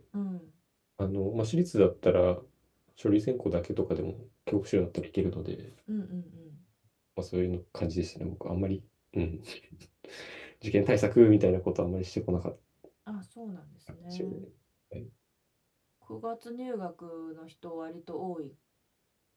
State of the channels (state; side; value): identical; both; correlation 1.00